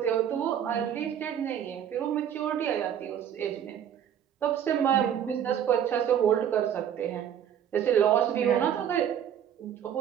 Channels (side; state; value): left; quieter; 9.3 dB